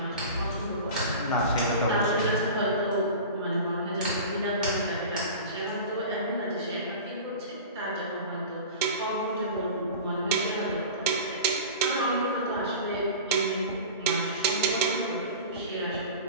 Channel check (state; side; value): inverted; both; correlation -0.34